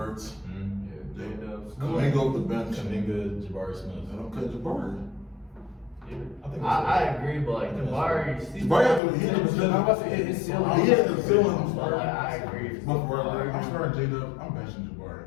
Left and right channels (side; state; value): right; drops out; at 9.0 s